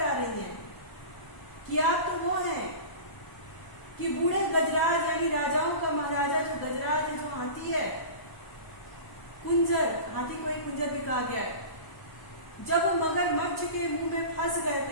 रही हैं कि आप तो वो हैं कि बूढ़े गजराज यानी राजाओं का महाराजा जो गजराज है, जो हाथी है, कुंजर, हाथी को ही कुंजर भी कहा गया है, जब वो मगरमच्छ के मुंह में फंस गए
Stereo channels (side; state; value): right; late; 1.0 ms